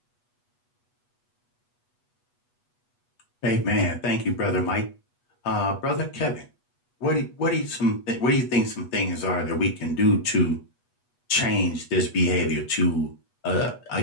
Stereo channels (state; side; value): late; right; 8.2 ms